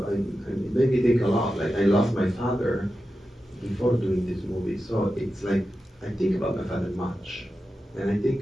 made me think a lot. Like, I lost my father before doing this movie, so it's like I think about my father much, and I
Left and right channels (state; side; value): normal; both; correlation 0.91